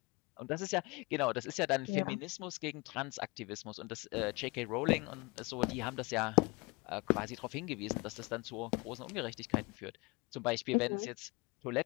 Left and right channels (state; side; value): quieter; right; 26.6 dB